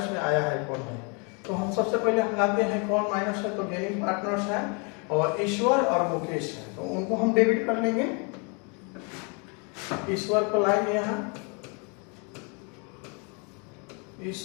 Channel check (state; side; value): quieter; right; 34.2 dB